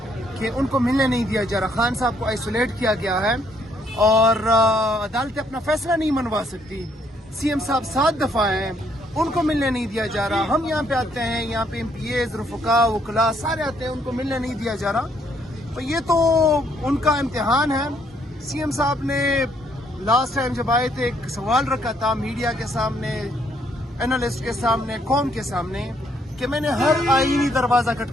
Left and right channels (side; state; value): both; normal; correlation 0.69